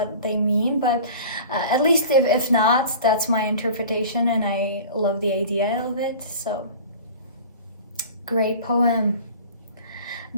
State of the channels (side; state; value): both; inverted; correlation -0.40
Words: they mean, but at least if not, that's my interpretation, and I love the idea of it. So great poem.